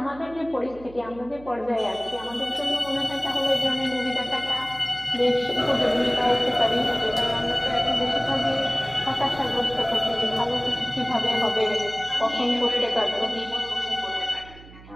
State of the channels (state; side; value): noise; right; hum, 20 dB below the sound